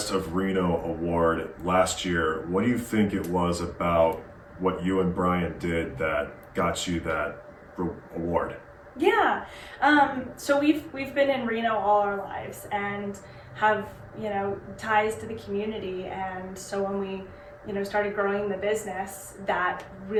of Reno award last year, what do you think it was about what you and Bryan did that got you that award? Yeah, so we've been in Reno all our lives and have, ties to the community, and so when we started growing the business, that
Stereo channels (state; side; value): identical; both; correlation 1.00